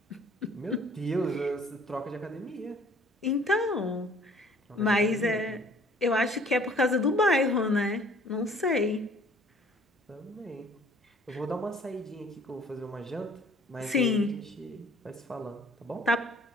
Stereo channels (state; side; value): normal; both; correlation 0.55